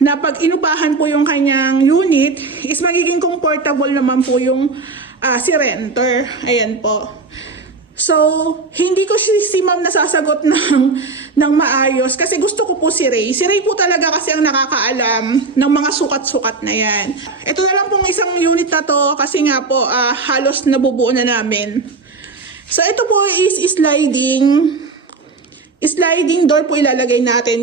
pag inupahan po yung kanyang unit is magiging comfortable naman po yung si renter. Ayan po. So, hindi ko si ma'am nasasagot ng maayos kasi gusto ko po si Ray. Si Ray po talaga kasi ang nakakaalam ng mga sukat-sukat na yan. Ito na lang pong isang unit na to kasi nga po halos nabubuo na namin. So, ito po is sliding door po ilalagay natin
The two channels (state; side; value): quieter; left; 4.0 dB